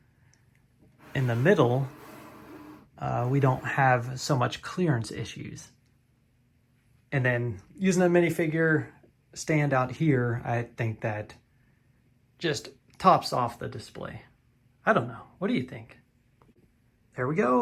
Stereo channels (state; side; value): identical; both; correlation 1.00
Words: in the middle, we don't have so much clearance issues. And then using a minifigure stand out here, I think that just tops off the display. I don't know. What do you think? There we